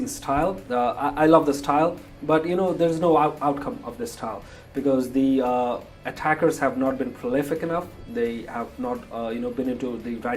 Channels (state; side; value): identical; both; correlation 1.00